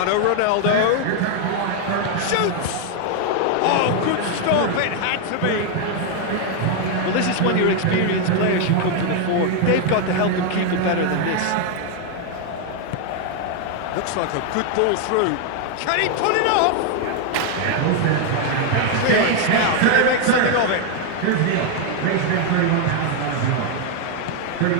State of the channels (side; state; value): both; different; correlation 0.00